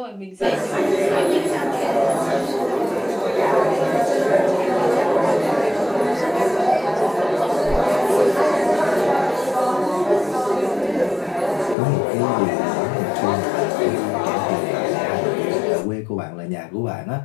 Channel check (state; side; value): drops out; right; at 11.8 s